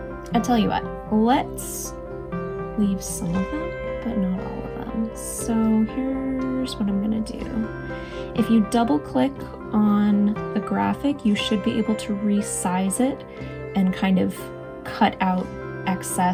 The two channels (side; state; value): both; identical; correlation 1.00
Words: I tell you what, let's leave some of them, but not all of them. So here's what I'm gonna do. If you double click on the graphic, you should be able to resize it and kind of cut out